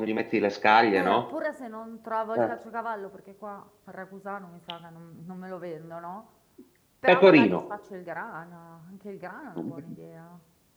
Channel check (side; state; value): both; identical; correlation 1.00